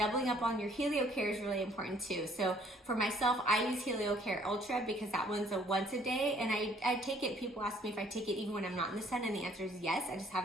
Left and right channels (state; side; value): normal; both; correlation 0.60